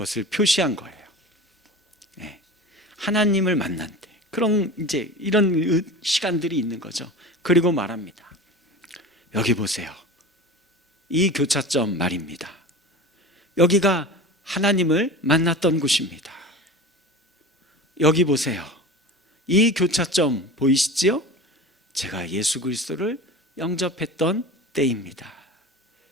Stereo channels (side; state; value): both; normal; correlation 0.33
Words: 표시한 거예요. 네. 하나님을 만난 때 그런 이제 이런 시간들이 있는 거죠. 그리고 말합니다. 여기 보세요. 이 교차점 말입니다. 여기가 하나님을 만났던 곳입니다. 여기 보세요. 이 교차점 보이시지요? 제가 예수 그리스도를 영접했던 때입니다.